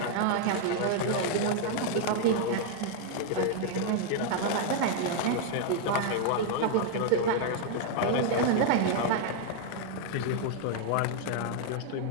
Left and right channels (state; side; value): different; both; correlation 0.00